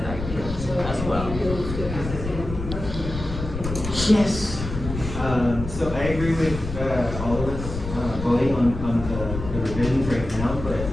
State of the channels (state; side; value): noise; left; rumble, 7 dB below the sound